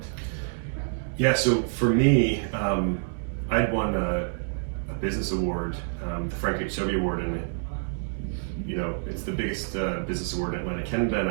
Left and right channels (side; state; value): left; silent; digital silence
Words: Yeah, so for me, I'd won a business award, the Frank H. Sobey Award, and it's the biggest business award in Atlantic Canada, and